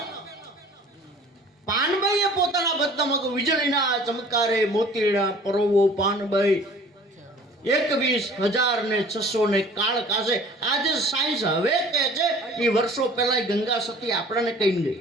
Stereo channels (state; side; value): normal; both; correlation 0.49